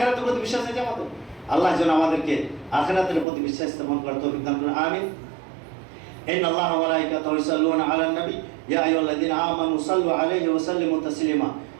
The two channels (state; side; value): drops out; left; at 3.2 s